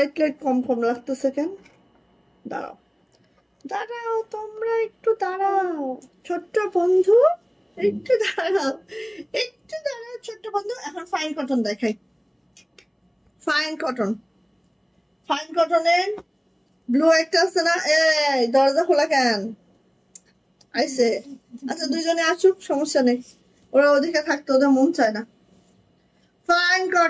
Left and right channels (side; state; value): both; identical; correlation 1.00